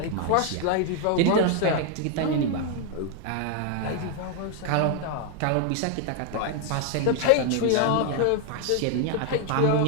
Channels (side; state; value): both; different; correlation 0.00